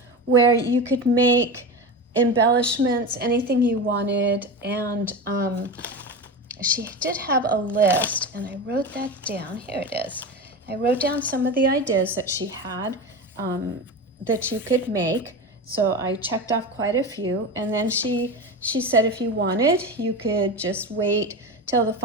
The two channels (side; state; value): both; normal; correlation 0.24